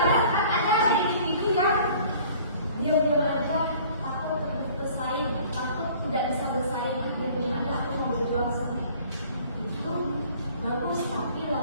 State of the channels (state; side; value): inverted; both; correlation -0.52